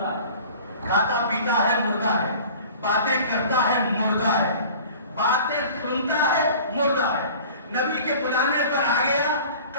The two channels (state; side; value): inverted; both; correlation -0.44